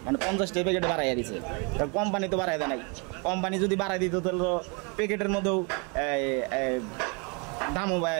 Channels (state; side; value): quieter; left; 32.9 dB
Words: মানে 50 টাকা প্যাকেটে বাড়াইয়া দিছে। কোম্পানি তো বাড়াই দেয় নাই, কোম্পানি যদি বাড়াই দিত তাহলে প্যাকেটের মধ্যেও দামও